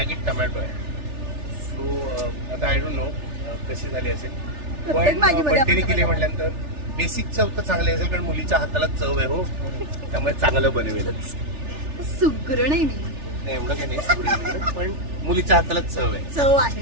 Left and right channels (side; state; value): left; late; 3.4 ms